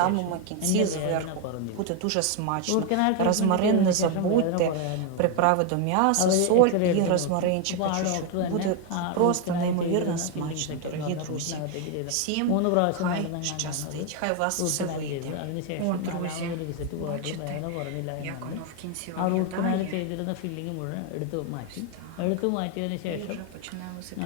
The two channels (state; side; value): different; both; correlation 0.01